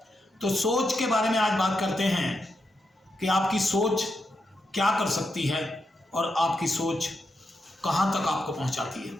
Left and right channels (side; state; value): both; normal; correlation 0.85